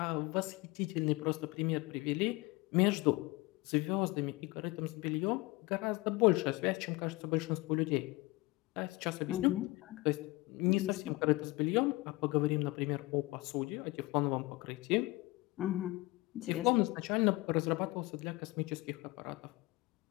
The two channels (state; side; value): quieter; right; 21.8 dB